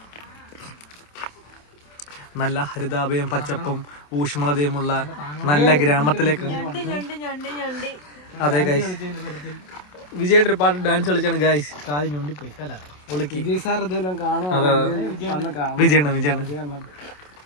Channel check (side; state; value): right; late; 27 ms